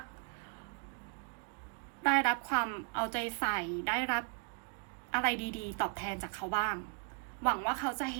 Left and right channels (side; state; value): left; quieter; 35.0 dB